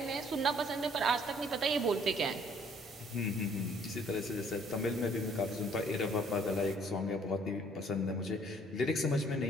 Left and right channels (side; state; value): both; normal; correlation 0.60